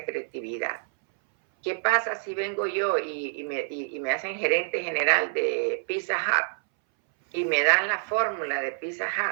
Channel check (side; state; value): left; silent; 60 dB below the other